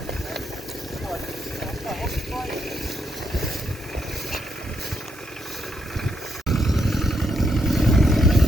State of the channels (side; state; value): both; normal; correlation 0.79